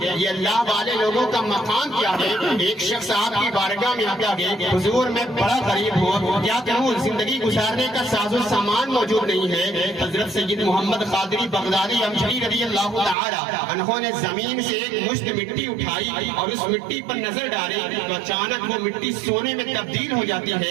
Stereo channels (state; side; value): drops out; left; at 13.2 s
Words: یہ اللہ والے لوگوں کا مقام کیا ہے۔ ایک شخص آپ کی بارگاہ میں آتا ہے، حضور میں بڑا غریب ہوں، کیا کروں، زندگی گزارنے کا ساز و سامان موجود نہیں ہے۔ حضرت سید محمد قادری بغدادی امجھری رضی اللہ تعالی عنہ نے زمین سے ایک مشت مٹی اٹھائی اور اس مٹی پر نظر ڈالی تو اچانک وہ مٹی سونے میں تبدیل ہو جاتی